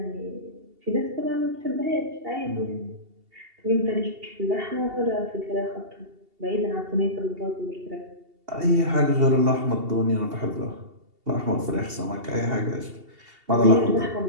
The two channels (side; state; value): left; late; 2.8 ms